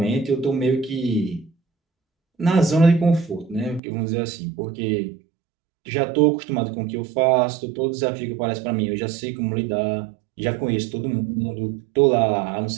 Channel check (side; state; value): left; drops out; at 3.8 s